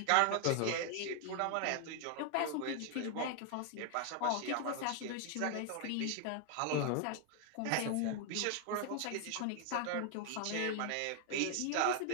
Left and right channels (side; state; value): both; different; correlation 0.00